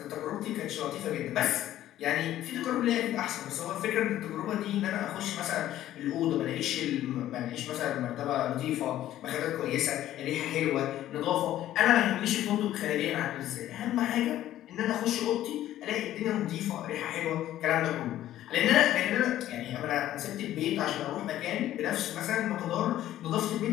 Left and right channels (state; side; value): quieter; right; 13.1 dB